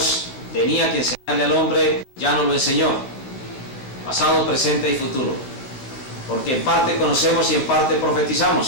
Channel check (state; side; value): late; right; 15 ms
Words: tenía que enseñarle al hombre ya no lo enseñó. Pasado, presente y futuro. Porque en parte conocemos y en parte